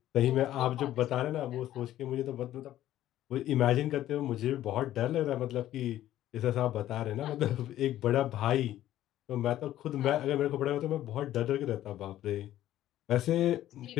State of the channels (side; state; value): right; quieter; 13.2 dB